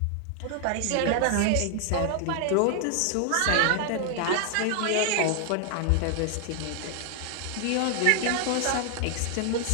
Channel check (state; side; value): different; both; correlation 0.00